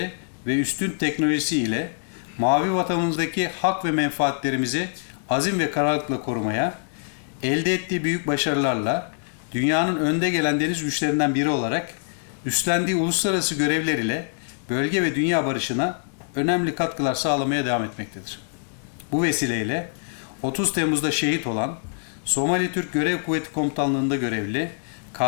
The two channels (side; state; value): right; silent; digital silence